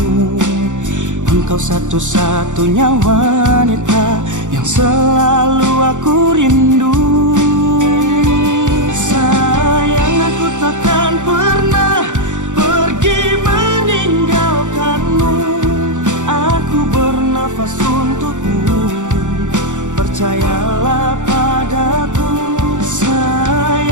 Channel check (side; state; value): left; late; 0.86 ms